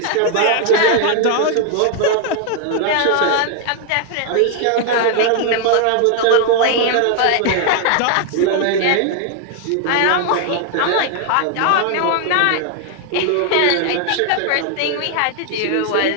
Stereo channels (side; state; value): both; different; correlation 0.00